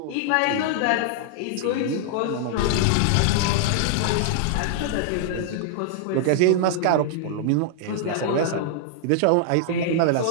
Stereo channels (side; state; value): both; different; correlation -0.01